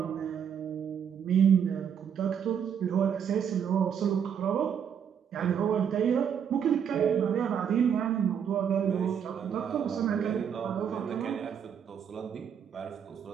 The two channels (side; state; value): left; quieter; 7.9 dB